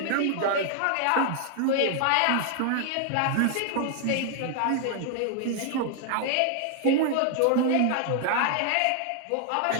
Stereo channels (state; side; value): different; both; correlation 0.00